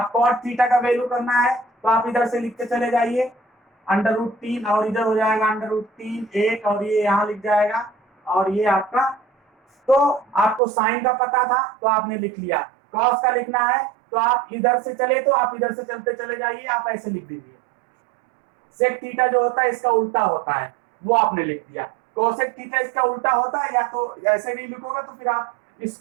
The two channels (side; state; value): left; drops out; at 10.6 s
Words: cot थीटा का वैल्यू करना है तो आप इधर से लिखते चले जाइए, √3 और इधर हो जाएगा √3 1 और ये यहाँ लिख जाएगा, और ये आपका, तो आपको साइन का पता था तो आपने लिख लिया। कॉस का लिखना है तो आप इधर से चले तो आप इधर से चलते चले जाइए, आप ऐसे लिख दीजिए। सेक थीटा जो होता है इसका उल्टा होता है, वो आपने लिख दिया। कोसेक थीटा इसका उल्टा होता है, या तो ऐसे नहीं लिखोगे तो फिर आप